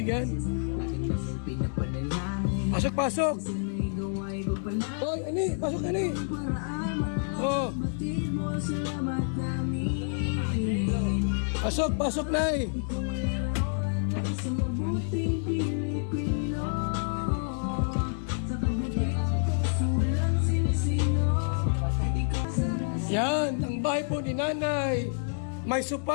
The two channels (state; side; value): silent; right; digital silence